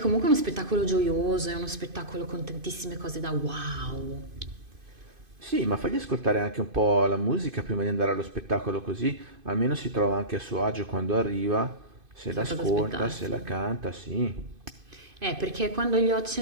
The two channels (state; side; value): late; left; 2.5 ms